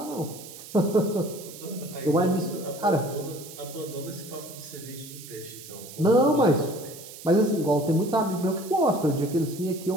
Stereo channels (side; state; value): right; noise; hiss, 15 dB below the sound